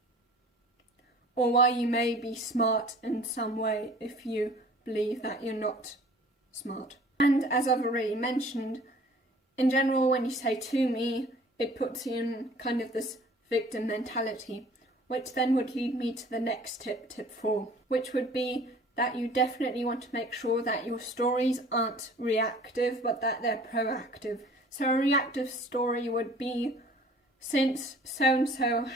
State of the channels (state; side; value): normal; both; correlation 0.50